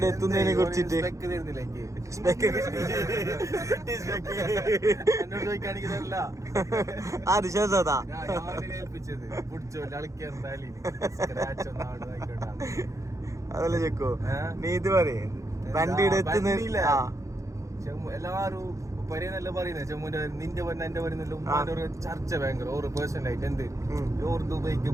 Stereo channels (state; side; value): late; left; 0.15 ms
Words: എത്തുന്നതിനെ കുറിച്ചിട്ട് അത് ശേഷതാ അതല്ല ചെക്കോ, നീ ഇത് പറയേ വണ്ടിയുടെ എത്തുന്നില്ല. എല്ലാരും നല്ല പറയുന്നത് ചെമ്മുന്റെ നിന്റെ പറഞ്ഞ എന്റെ പറയുന്നല്ലോ. ഉമ്മാന്റെ ഒരു ചർച്ച ഭയങ്കര ഓരോ പേഴ്സണലായിട്ട് എന്ത് ഓർ ദുബൈക്ക്